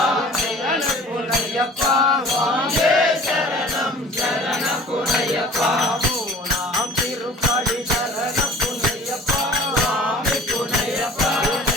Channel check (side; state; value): both; normal; correlation 0.46